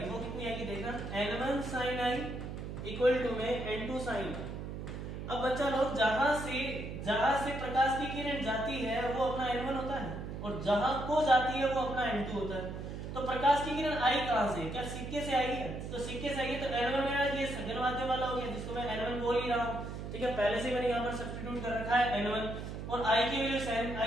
वो कितनी आएगी, देखना n1 sin i equal to में n2 sin i। अब बच्चा लोग जहां से प्रकाश की किरण जाती है वो अपना n1 होता है, और जहां को जाती है वो अपना n2 होता है। तो प्रकाश की किरण आई कहां से, क्या सिक्के से आई है, तो सिक्के से आई है, तो n1 मेरा ये सघन माध्य वाला हो गया जिसको मैं n1 बोल ही रहा हूँ, ठीक है। पहले से मैंने यहाँ पर सब्स्टिट्यूट कर रखा है n1, और i की वैल्यू sin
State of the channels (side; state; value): right; noise; hum, 7 dB below the sound